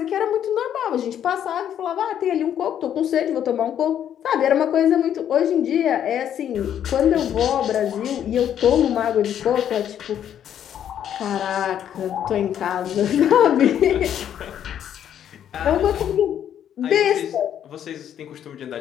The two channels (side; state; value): right; quieter; 9.8 dB